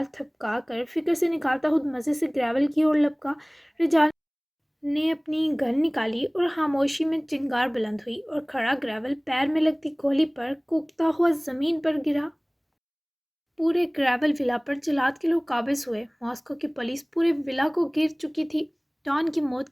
تھپکا کر فکر سے نکالتا خود مزے سے گریول کی اور لپکا۔ رجال نے اپنی گن نکالی اور خاموشی میں چنگار بلند ہوئی، اور کھڑا گریول پیر میں لگتی گولی پر کوکتا ہوا زمین پر گرا۔ پورے گریول ولا پر جلاد کے لوگ قابض ہوئے۔ ماسکو کی پولیس پورے ولا کو گھیر چکی تھی۔ ڈان کی موت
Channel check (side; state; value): both; identical; correlation 1.00